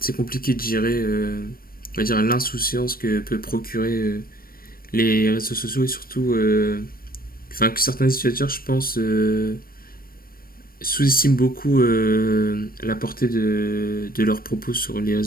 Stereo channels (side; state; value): right; late; 0.43 ms